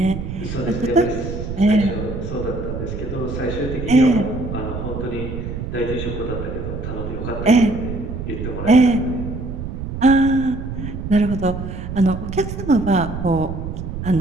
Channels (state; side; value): noise; right; rumble, 6 dB below the sound